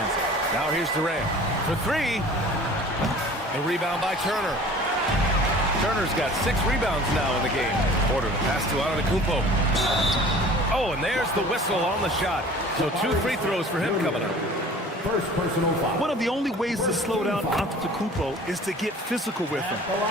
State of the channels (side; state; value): both; normal; correlation 0.46